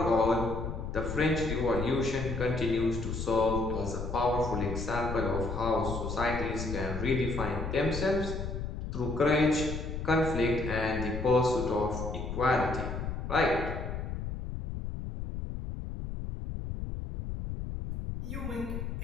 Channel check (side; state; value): left; noise; rumble, 5 dB below the sound